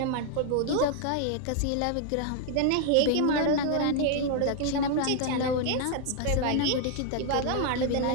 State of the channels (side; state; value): both; different; correlation 0.00